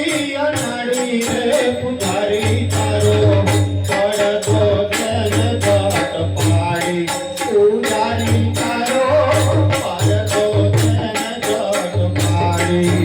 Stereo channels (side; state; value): both; identical; correlation 1.00